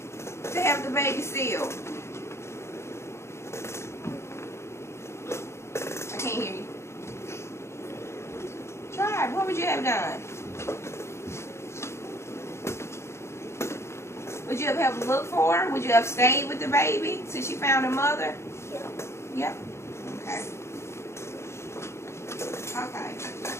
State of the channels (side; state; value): right; late; 0.13 ms